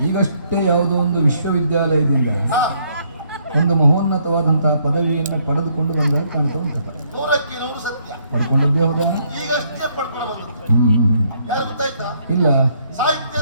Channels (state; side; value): inverted; both; correlation -0.69